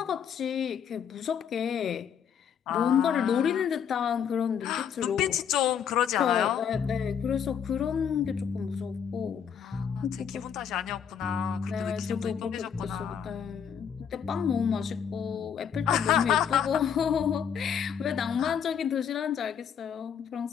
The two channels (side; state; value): right; quieter; 7.9 dB